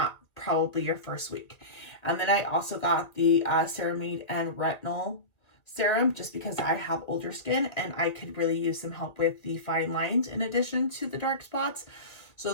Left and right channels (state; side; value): late; right; 1.8 ms